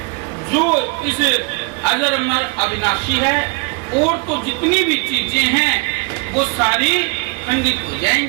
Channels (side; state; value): left; quieter; 30.3 dB